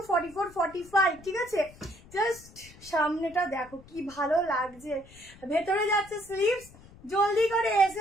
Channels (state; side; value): noise; left; rumble, 22 dB below the sound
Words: 44, 45, ঠিক আছে। জাস্ট সামনেটা দেখো কি ভালো লাগছে, ভেতরে যাচ্ছে স্লিভস। জলদি করে